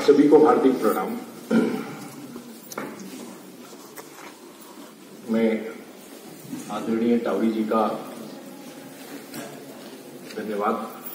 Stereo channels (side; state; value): both; identical; correlation 1.00